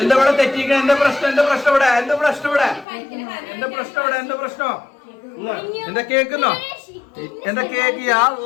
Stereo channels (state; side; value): drops out; right; at 2.9 s